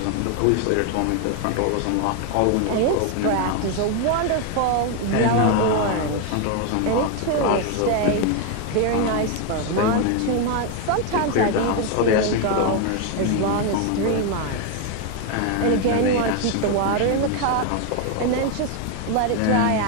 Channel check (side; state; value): both; different; correlation 0.01